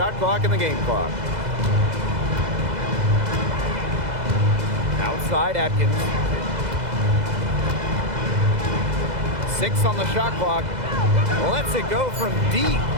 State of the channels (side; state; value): left; late; 2.0 ms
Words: clock and the game clock. Outside Atkins. 6 on the shot clock. Lets it go from deep.